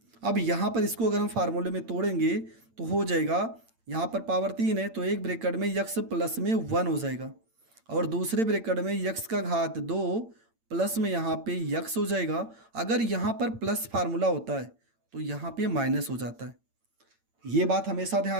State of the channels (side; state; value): left; late; 8.8 ms